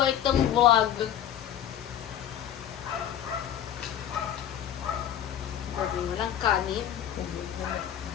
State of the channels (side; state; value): right; quieter; 10.4 dB